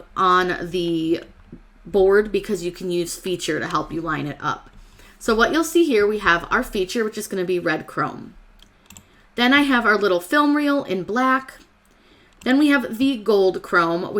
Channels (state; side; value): identical; both; correlation 1.00